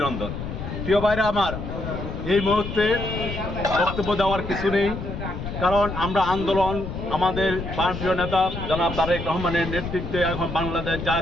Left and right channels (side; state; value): left; noise; rumble, 6 dB below the sound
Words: প্রিয় ভাইরা আমার, এই মুহূর্তে বক্তব্য দেওয়ার কিছু নেই, কারণ আমরা আন্দোলন আমাদের প্রাণপ্রিয় নেতা জনাব তারেক রহমানের নেতৃত্বে এখন বাংলাদেশ